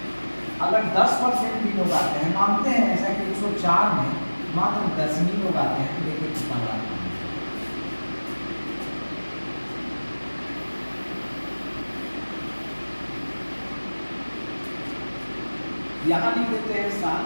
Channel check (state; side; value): inverted; both; correlation -1.00